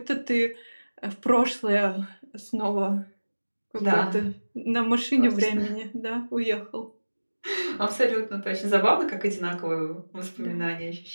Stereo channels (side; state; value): both; inverted; correlation -1.00